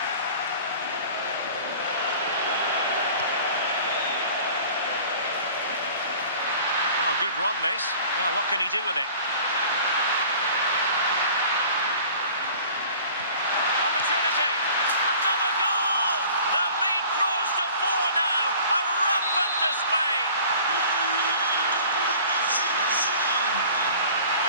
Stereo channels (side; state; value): both; inverted; correlation -0.46